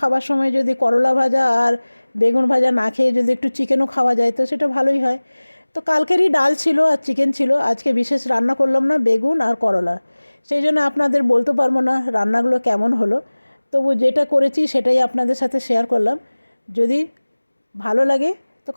সময় যদি করলা ভাজা আর বেগুন ভাজা না খেয়ে যদি একটু চিকেনও খাওয়া যায় তো সেটা ভালোই হয়। তো কালকেরই ডাল ছিল আর চিকেন ছিল, আজকে বিশেষ রান্না করলাম না, বেগুন আর করলা। সেই জন্য আপনাদের বলতে পারবো না রান্নাগুলো কেমন হলো, তবু যেটা করেছি সেটাই আপনাদের সাথে শেয়ার করলাম। যদি ভালো লাগে তো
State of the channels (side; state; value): both; inverted; correlation -1.00